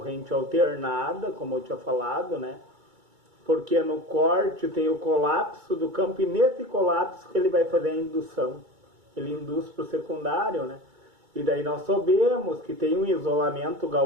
alternada, como eu tinha falado, né? Porque no corte tem o colapso do campo e nesse colapso que ele vai fazer a indução. Ele induz para o secundário, né? E daí nós sabemos que tem um isolamento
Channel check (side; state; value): left; late; 2.3 ms